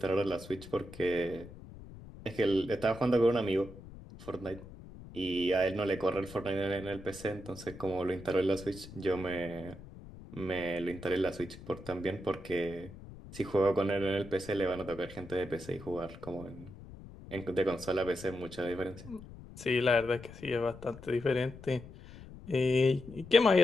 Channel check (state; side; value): noise; left; rumble, 16 dB below the sound